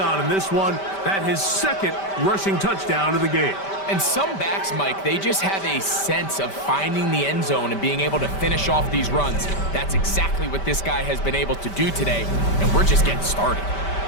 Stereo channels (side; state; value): right; late; 5.1 ms